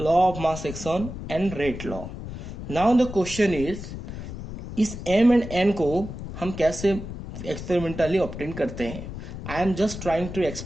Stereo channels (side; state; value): left; noise; rumble, 9 dB below the sound